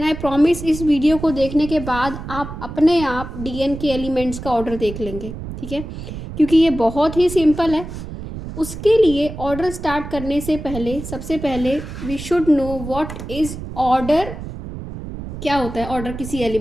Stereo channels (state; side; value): noise; right; rumble, 9 dB below the sound